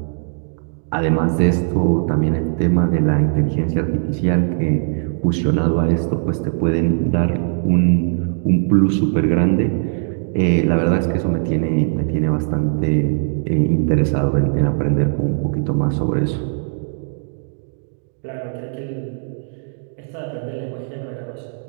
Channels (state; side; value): silent; left; 66 dB below the other